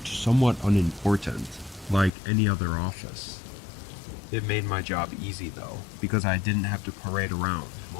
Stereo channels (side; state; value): right; drops out; at 2.1 s